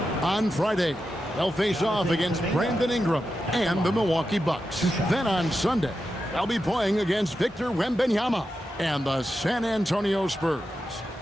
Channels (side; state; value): both; normal; correlation 0.89